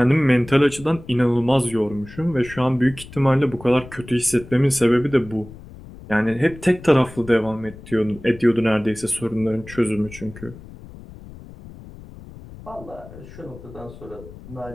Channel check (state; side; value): noise; left; rumble, 17 dB below the sound